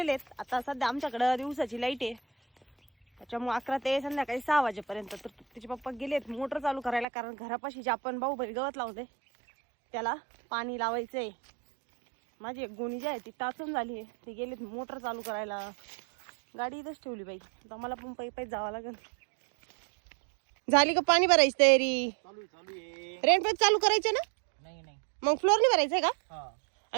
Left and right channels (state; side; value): drops out; left; at 7.1 s